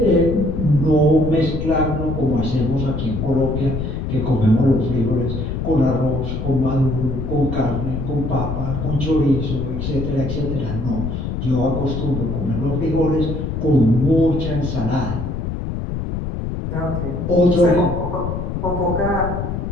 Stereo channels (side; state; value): left; noise; rumble, 3 dB below the sound